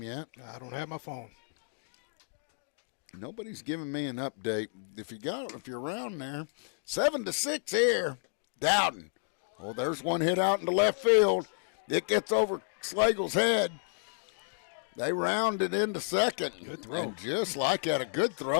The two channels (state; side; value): silent; right; digital silence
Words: yet? I don't have my phone. Nobody's giving me an update. If you're around there, 7-6 here, Dowden. Oh, there's one hit out into left field. It gets over Slagle's head. They round it into second. Good throw. And just like that, a good